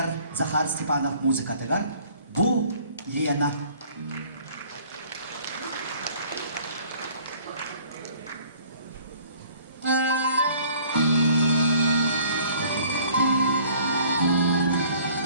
Захар Степанов музыкатыгар Бу Лена.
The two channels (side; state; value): both; inverted; correlation -0.55